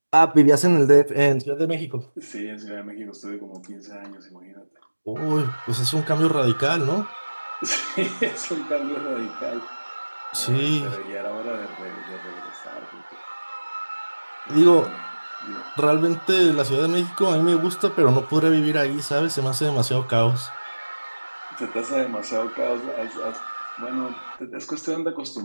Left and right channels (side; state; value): both; inverted; correlation -1.00